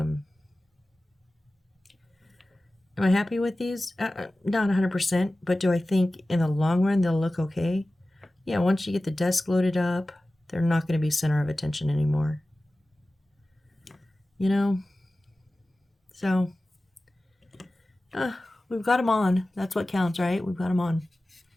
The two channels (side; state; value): both; normal; correlation 0.96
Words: I happy with these? Not 100%, but do I think in the long run they'll look okay? Yeah, once you get the desk loaded up, they're not going to be center of attention anymore. You know? So, we've got them on. That's what counts, right? We've got them on.